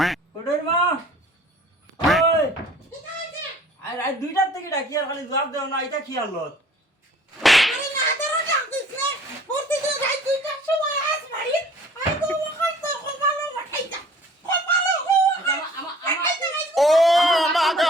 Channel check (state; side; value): normal; both; correlation 0.52